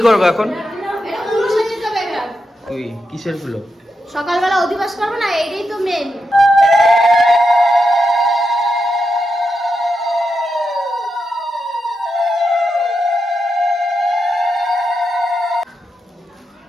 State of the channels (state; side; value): normal; both; correlation 0.86